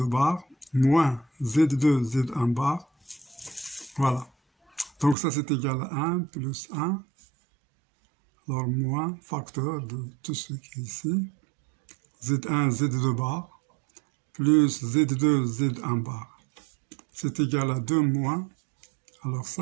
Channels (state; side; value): drops out; left; at 5.2 s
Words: bar moins Z2 Z1 bar, voilà. Donc ça c'est égal à 1 plus 1, alors moins facteur de tout ce qui est ici, Z1 Z2 bar plus Z2 Z1 bar, c'est égal à 2 moins, alors